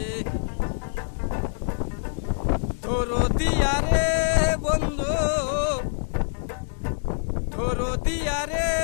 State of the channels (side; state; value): right; silent; digital silence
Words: দরদিয়া রে বন্ধু, দরদিয়া রে